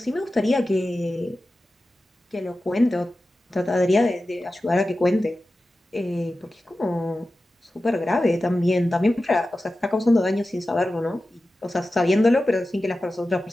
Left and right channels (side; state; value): both; normal; correlation 0.94